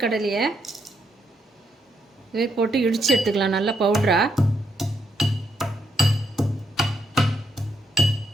போட்டு இடித்து எடுத்துக்கலாம் நல்லா பவுடரா.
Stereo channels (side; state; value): both; normal; correlation 0.76